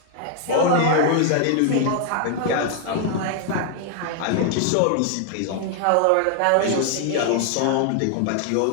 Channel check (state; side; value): different; both; correlation 0.00